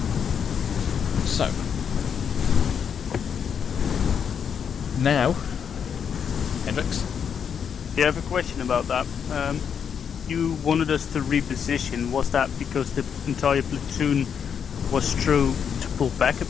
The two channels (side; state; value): right; quieter; 7.4 dB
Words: So, now, Hendrix? Yeah, I have a question about that. You wanted us to reposition. Was that because the entire platoon was true to pull back a